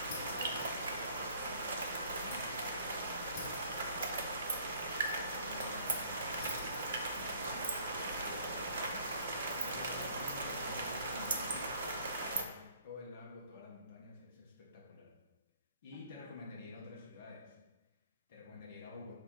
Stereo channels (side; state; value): both; inverted; correlation -0.57